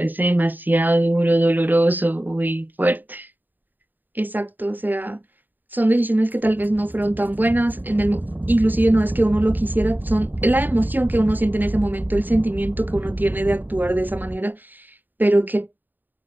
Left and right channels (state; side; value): late; left; 0.089 ms